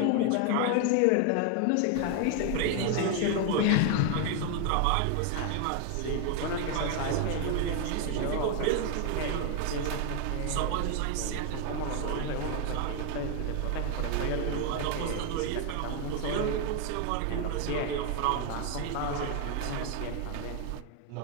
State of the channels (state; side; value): different; both; correlation 0.01